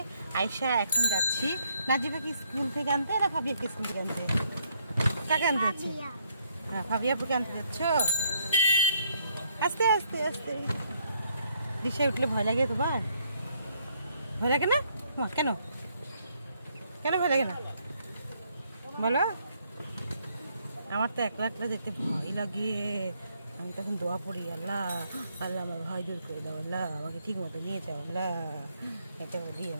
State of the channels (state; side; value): inverted; both; correlation -0.70